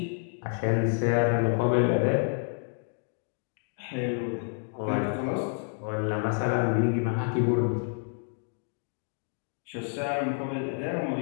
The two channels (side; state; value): right; silent; 58 dB below the other